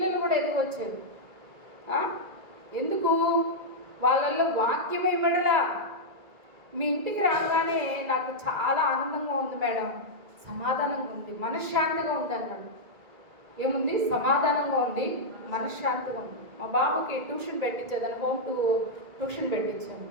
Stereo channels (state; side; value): late; left; 1.9 ms